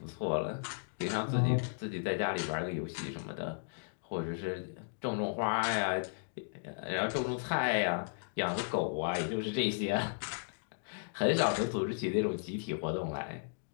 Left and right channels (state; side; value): silent; right; digital silence